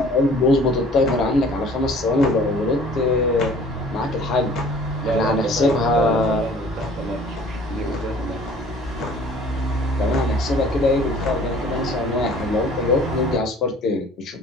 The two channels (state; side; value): normal; both; correlation 0.51